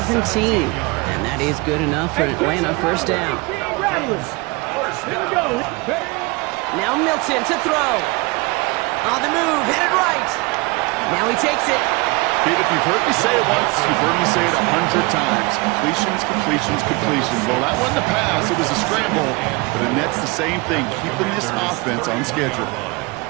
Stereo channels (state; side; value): quieter; left; 25.9 dB